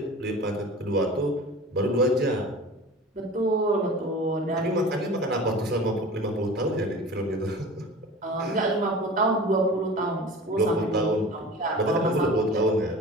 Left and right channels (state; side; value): normal; both; correlation 0.38